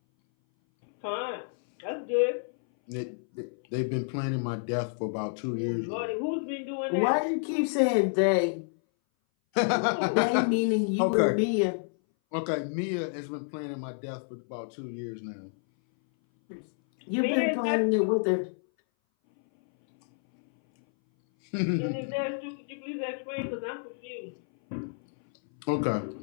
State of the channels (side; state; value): right; silent; 58 dB below the other